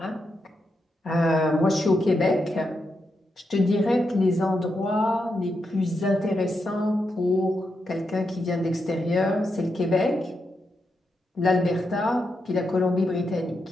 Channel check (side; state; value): both; normal; correlation 0.84